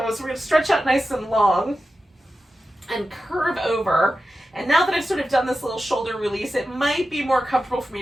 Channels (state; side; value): normal; both; correlation 0.92